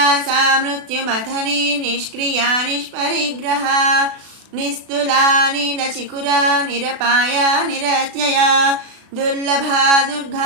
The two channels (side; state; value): left; late; 36 ms